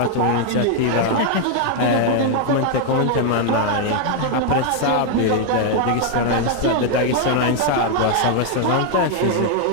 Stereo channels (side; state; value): both; different; correlation 0.00